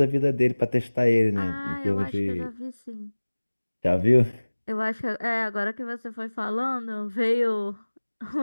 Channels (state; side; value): inverted; both; correlation -1.00